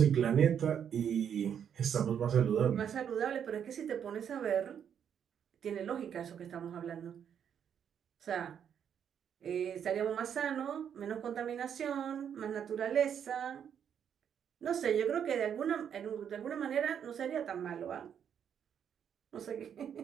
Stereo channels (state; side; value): quieter; left; 8.4 dB